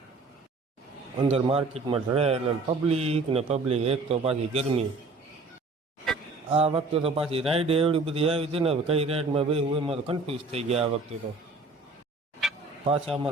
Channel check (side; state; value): left; quieter; 3.5 dB